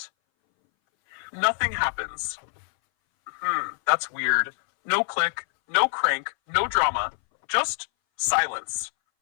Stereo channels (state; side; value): silent; right; 60 dB below the other